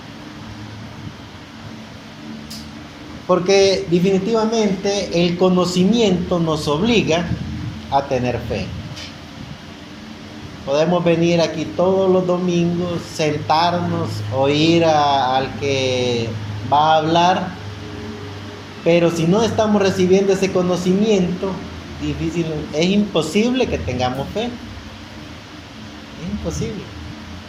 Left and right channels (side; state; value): both; identical; correlation 1.00